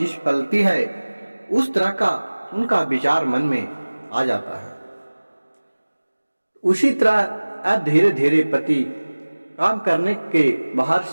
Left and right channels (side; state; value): both; inverted; correlation -1.00